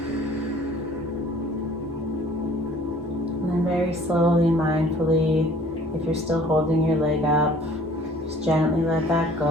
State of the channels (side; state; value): both; normal; correlation 0.53